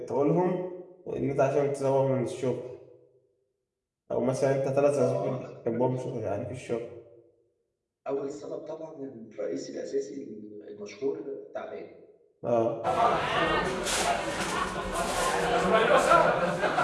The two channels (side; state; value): both; identical; correlation 1.00